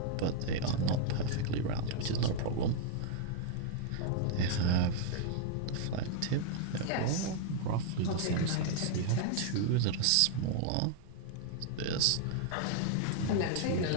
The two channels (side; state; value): both; different; correlation 0.00